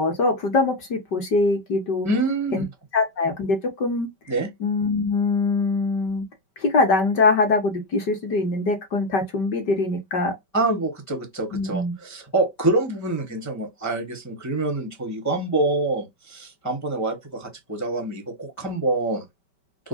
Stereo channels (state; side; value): late; right; 5.2 ms